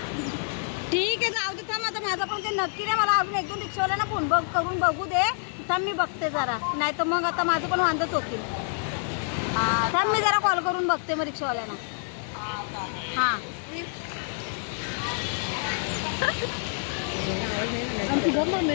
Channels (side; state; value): right; silent; 60 dB below the other